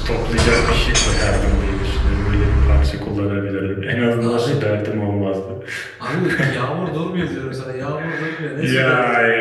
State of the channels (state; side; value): identical; both; correlation 1.00